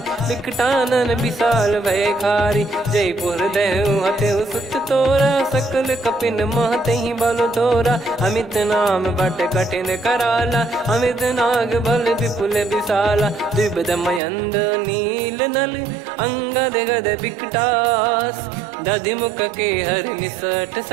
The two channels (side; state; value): left; drops out; at 14.2 s